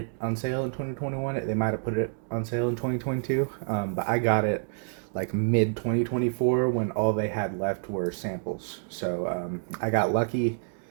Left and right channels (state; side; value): silent; left; digital silence